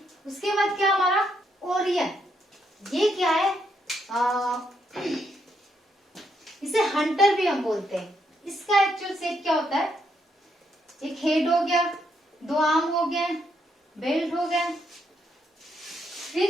उसके बाद क्या हमारा ओरियन, ये क्या है, इसे हंटर भी हम बोलते हैं। इसका एक्चुअल शेप क्या होता है, एक हेड हो गया, 2 आर्म हो गए, बेल्ट हो गया,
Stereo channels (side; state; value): both; normal; correlation 0.76